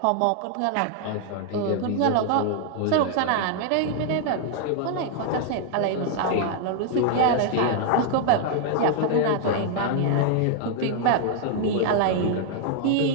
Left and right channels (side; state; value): both; different; correlation 0.00